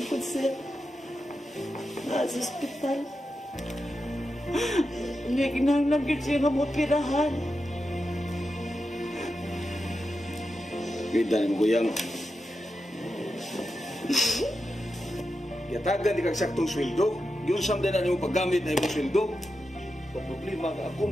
ko, sir. Nasa ospital. Hindi kinahanglan gyud siya nga mopirahan. Kita ni mo kuyang. Yatagan di kag saktong sweldo. Yung samdan na nimo paggamit na imong sweldo. Pag problema ka ako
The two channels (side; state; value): both; normal; correlation 0.89